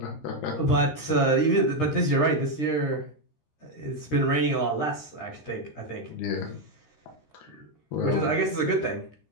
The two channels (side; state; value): right; late; 13 ms